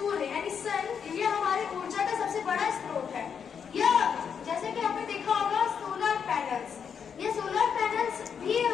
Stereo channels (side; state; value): right; quieter; 7.1 dB